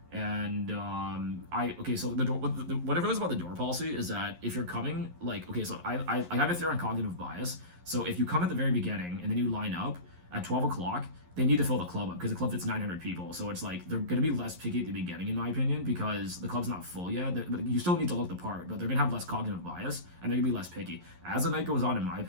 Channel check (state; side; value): late; left; 11 ms